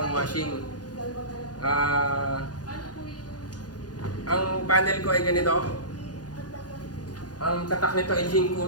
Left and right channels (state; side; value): late; right; 0.69 ms